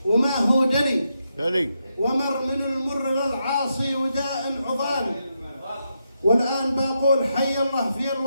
وما هو دلي ومر من المر للعاصي ودائم عضال. والآن بقول حي الله في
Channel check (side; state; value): both; inverted; correlation -0.83